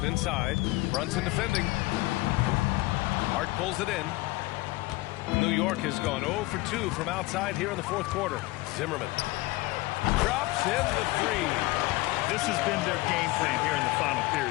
inside. Brunson defending. Hart pulls it in. New York has gone 0 for 2 from outside here in the fourth quarter. Zimmerman drops in the 3. This has been their game plan here in the final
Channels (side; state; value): right; quieter; 20.5 dB